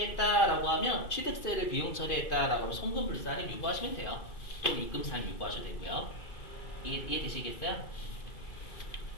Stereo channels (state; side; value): late; right; 2.5 ms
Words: 하면 취득세를 비용 처리했다라고 하면 손금불산을 유보하시면 돼요. 또 입금산 유보하셔도 되고요. 이해되시겠어요?